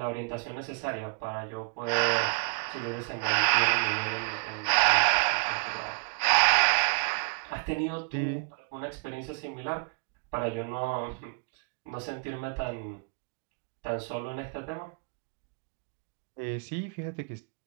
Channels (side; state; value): left; quieter; 35.0 dB